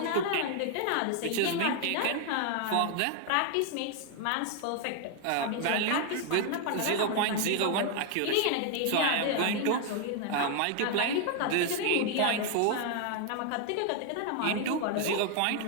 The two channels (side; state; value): both; different; correlation 0.00